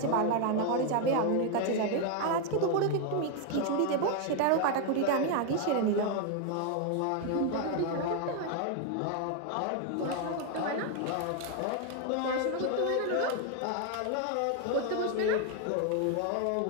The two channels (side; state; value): both; different; correlation 0.01